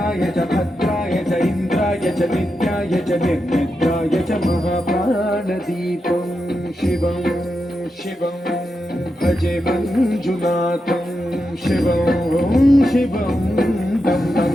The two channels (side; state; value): both; normal; correlation 0.87